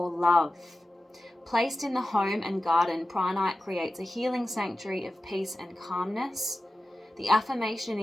love. Placed in the home and garden, Pranite creates a healing sanctuary of peace and calmness. The affirmation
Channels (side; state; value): both; normal; correlation 0.94